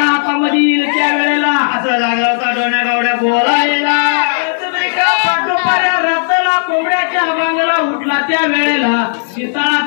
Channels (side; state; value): right; silent; digital silence